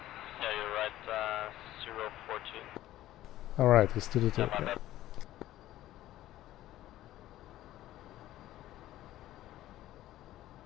you're right, 014. Alright, let's do the Yeah, 2. my bad.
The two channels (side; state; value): right; quieter; 14.5 dB